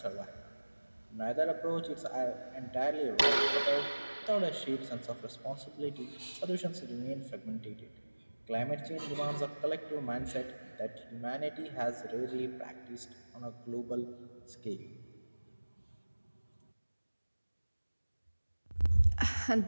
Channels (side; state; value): both; inverted; correlation -1.00